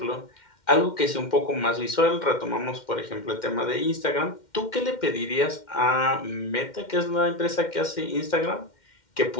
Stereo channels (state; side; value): late; right; 2.1 ms